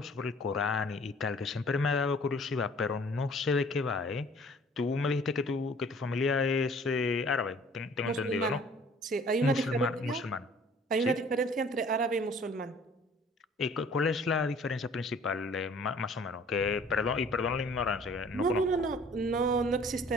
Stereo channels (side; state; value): both; normal; correlation 0.53